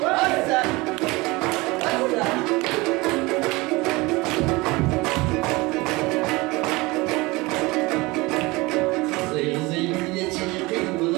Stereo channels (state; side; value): quieter; left; 23.0 dB